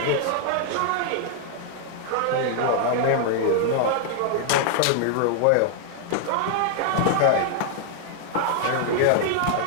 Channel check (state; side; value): different; both; correlation 0.00